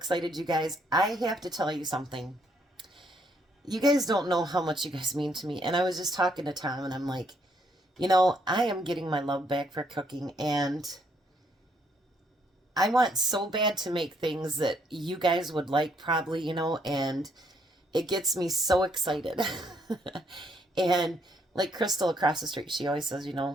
you guys. I have to tell you something. You guys don't know how much you guys mean to me. And I was just talking to Tom, and I'm like, you know, I am getting my love back for cooking, and I want so bad to make things that you guys would like probably, you know, and it gets me so excited. And like Crystal across the street, she always says, you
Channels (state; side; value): normal; both; correlation 0.70